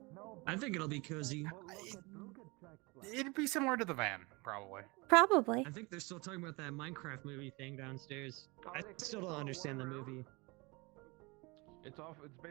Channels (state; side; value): quieter; left; 26.2 dB